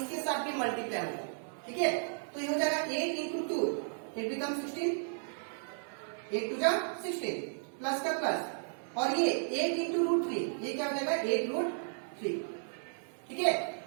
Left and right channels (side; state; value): left; silent; 55 dB below the other